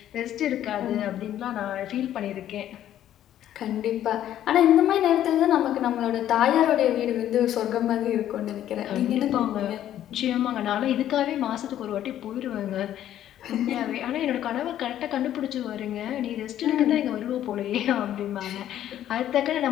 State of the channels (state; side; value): quieter; right; 11.6 dB